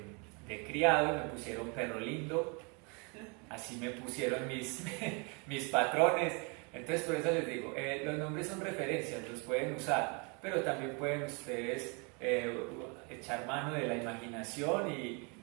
de criado y me pusieron Perro Lindo, así me pusieron mis patrones. Entonces por eso les digo, los nombres son referencias, los pueden usar, pero también pueden ustedes echar mano de la imaginación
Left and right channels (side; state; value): left; quieter; 32.9 dB